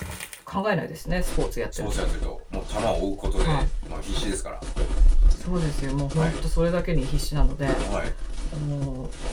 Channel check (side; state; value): both; identical; correlation 1.00